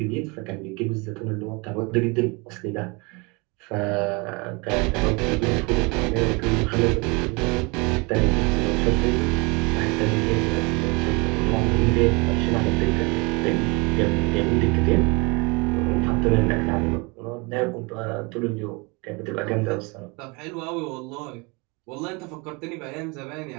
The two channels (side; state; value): left; quieter; 28.5 dB